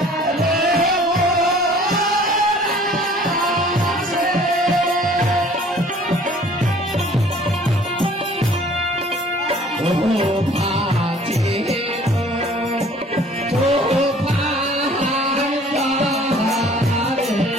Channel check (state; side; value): normal; both; correlation 0.52